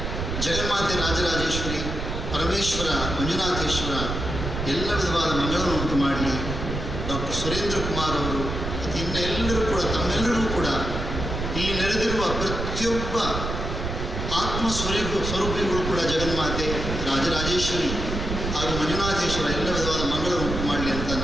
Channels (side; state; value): right; noise; rumble, 4 dB below the sound